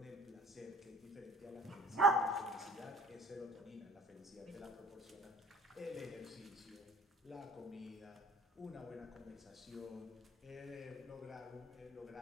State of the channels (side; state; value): both; normal; correlation 0.50